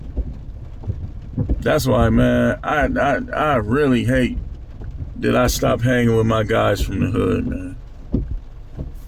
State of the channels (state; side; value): identical; both; correlation 1.00